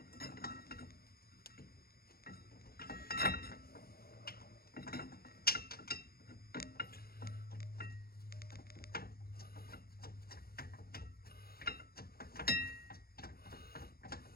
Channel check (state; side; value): late; right; 0.44 ms